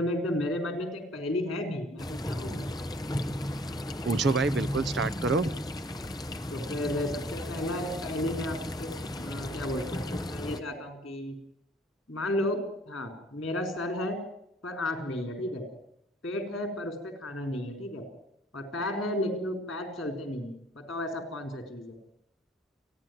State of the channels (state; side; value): normal; both; correlation 0.56